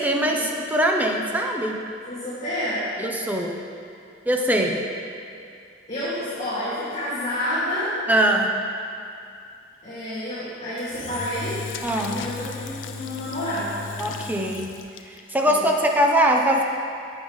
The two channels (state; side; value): normal; both; correlation 0.35